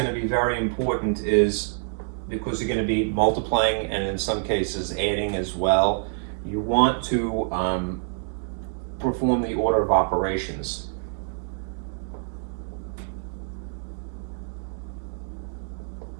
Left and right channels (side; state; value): left; silent; digital silence